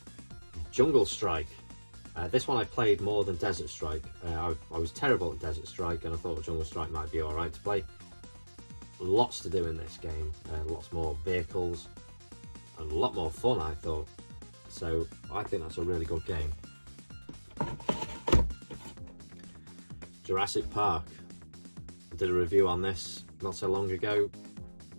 Jungle Strike. This one I played more than Desert Strike. I was terrible at Desert Strike and I thought Jungle Strike might be alright to play. Lots to do in this game, lots more vehicles and a lot more fun I thought. So I think that's a really good game. Jurassic Park. I did a review on this not so long ago.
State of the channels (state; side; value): inverted; both; correlation -1.00